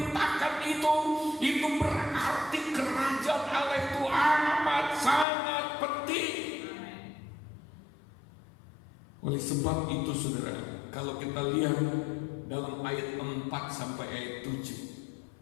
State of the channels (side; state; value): right; drops out; at 5.2 s